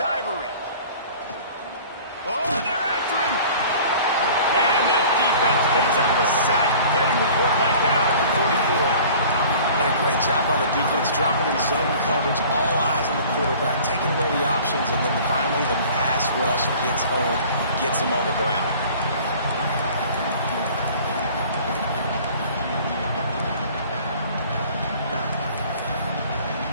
Oh, they're after him. And the defense picks up the sack, getting the quarterback down at the 44. And a great job by the defense, dropping in zone coverage, all eyes on the quarterback, taking away the options, and then finally the pass rush gets home, gets him on the ground.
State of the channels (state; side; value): inverted; both; correlation -0.47